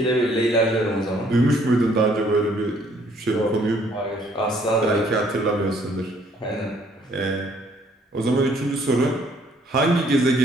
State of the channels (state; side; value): normal; both; correlation 0.63